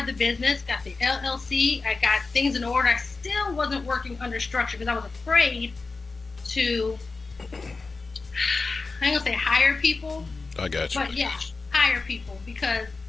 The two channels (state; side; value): quieter; right; 4.0 dB